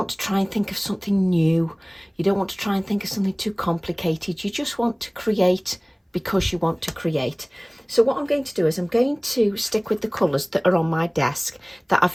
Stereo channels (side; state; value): both; identical; correlation 1.00